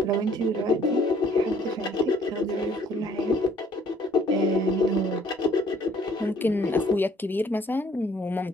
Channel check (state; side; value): normal; both; correlation 0.60